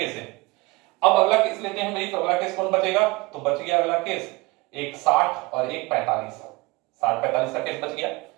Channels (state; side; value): quieter; left; 23.7 dB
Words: से। अब अगला केस लेते हैं भाई, तो अगला केस कौन बचेगा, तो बच गया अगला केस एक 60 और एक 45। 60-45 का केस बच गया।